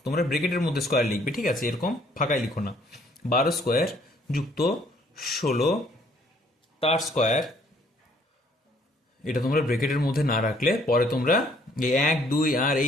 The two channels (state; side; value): normal; both; correlation 0.63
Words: তোমরা ব্রেকেটের মধ্যে স্কোয়ার লিখবে, ঠিক আছে, এরকম ফাঁকায় লিখো না। 12 স্কোয়ার যুক্ত 16 তার স্কোয়ার। এটা তোমরা ব্রেকেটের মধ্যে না রাখলে পরে তোমরা এই 1 2 আর